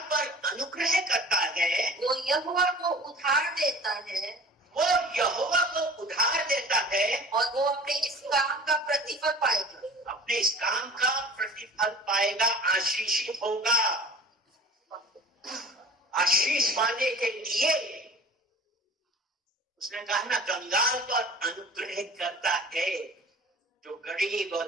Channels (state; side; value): normal; both; correlation 0.43